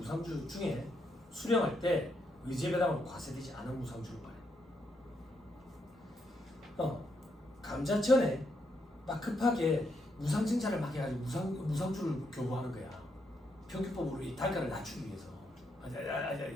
중에 수령할 때 의제 배당으로 과세되지 않은 무상주를 말해. 감자전에 막 급하게 무상 증차를 막 해가지고 무상주를 교부하는 거야. 평균법으로 이 단가를 낮추기 위해서.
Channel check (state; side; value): normal; both; correlation 0.78